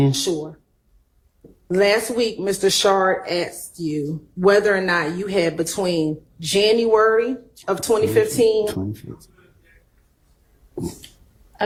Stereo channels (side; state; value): both; identical; correlation 1.00